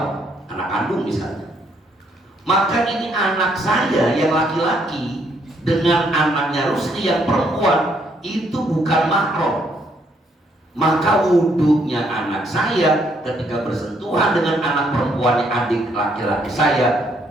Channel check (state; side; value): normal; both; correlation 0.70